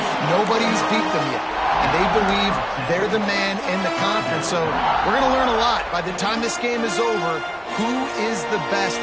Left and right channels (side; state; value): both; identical; correlation 1.00